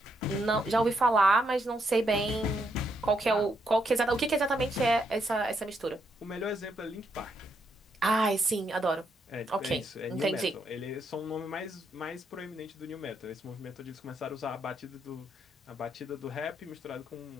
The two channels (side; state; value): both; normal; correlation 0.77